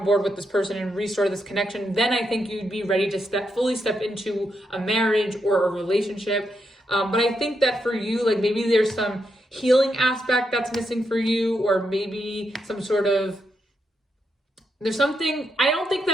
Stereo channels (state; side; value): normal; both; correlation 0.82